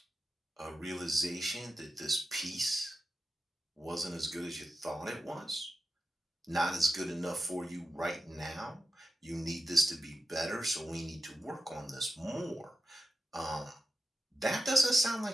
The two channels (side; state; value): both; normal; correlation 0.90